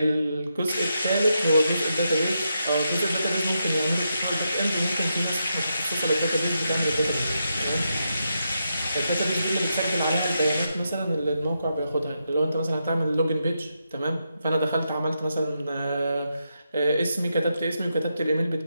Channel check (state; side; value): inverted; both; correlation -0.84